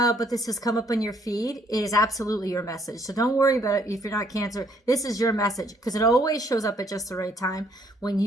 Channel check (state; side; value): normal; both; correlation 0.66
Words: but this has come up on your feed, it is absolutely your message. So don't worry about it if you're not Cancer. This is your message because it always shows up at just the right time when